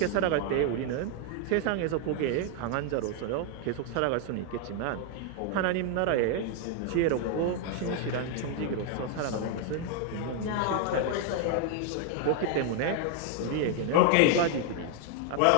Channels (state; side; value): different; both; correlation 0.00